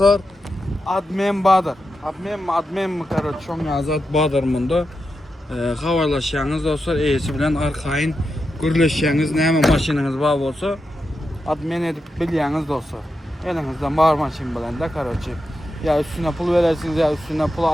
admin Badır. Admin mi karı çok yazat Badır bunda. Havalaşıyorsunuz dostlar. Iyisi bilen arkayın gürleşiyorsunuz. Ne hemen maşininiz var olsa admin edip biliyorsunuz dostlar. Elinizden var maşin bilen de karıcı. Ya üstüne pul verirsiniz ya üstüne pul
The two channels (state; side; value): normal; both; correlation 0.88